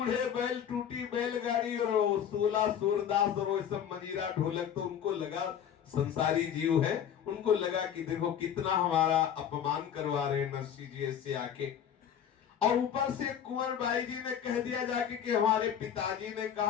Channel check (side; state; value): right; quieter; 8.9 dB